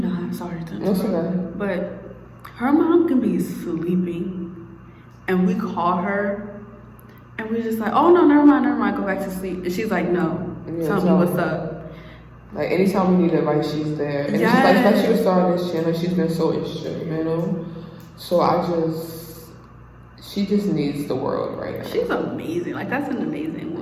Sorry to That's interrupt. okay. But her mom can be sleeping, and we call her, and we're just like, oh no, never mind, go back to sleep. And she's like, no, Yeah, tell me what's up. Like anytime we need advice, she's there. And Yes. she's like, especially with starting this channel, she's been so instrumental. So she just needs the world right now. She's amazing. Like that's an amazing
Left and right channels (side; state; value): both; identical; correlation 1.00